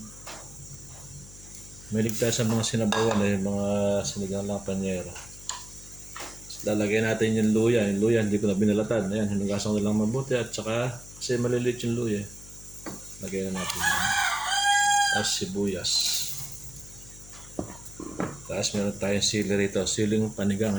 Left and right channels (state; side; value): noise; left; hum, 19 dB below the sound